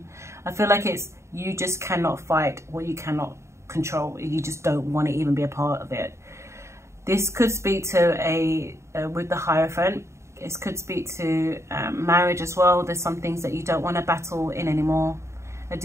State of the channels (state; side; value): late; left; 0.14 ms